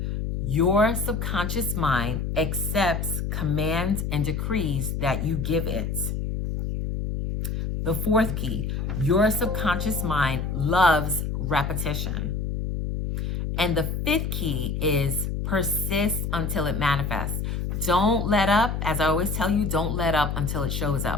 your subconscious mind accepts commands and decrees that you give it. The fourth key, your subconscious mind loves repetition. And the fifth key is persist until it manifests. Don't let up. As I always tell you, don't let up until it shows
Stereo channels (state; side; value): noise; left; hum, 2 dB below the sound